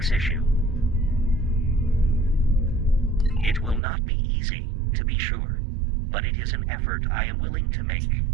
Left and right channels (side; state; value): left; drops out; at 3.8 s